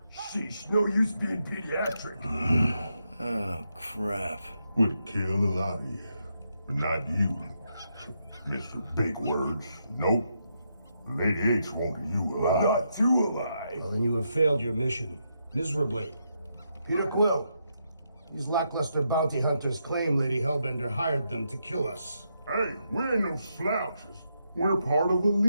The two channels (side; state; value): both; inverted; correlation -0.81